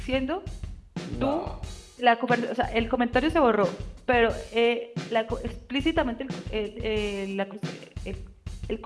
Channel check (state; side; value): identical; both; correlation 1.00